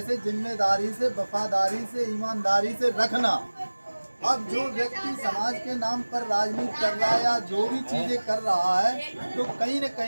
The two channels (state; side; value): inverted; both; correlation -1.00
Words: से जिम्मेदारी से, वफादारी से, ईमानदारी से रखना। अब जो व्यक्ति समाज के नाम पर राजनीति कर रहा है या जो भी चीज़ें कर रहा है, तो कहीं न